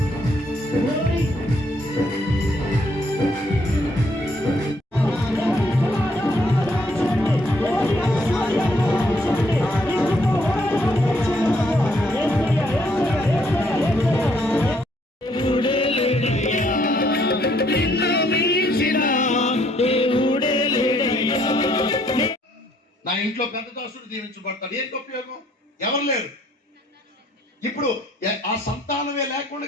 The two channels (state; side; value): normal; both; correlation 0.68